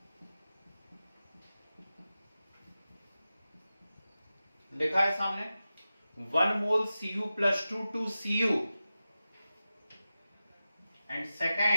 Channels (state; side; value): inverted; both; correlation -0.94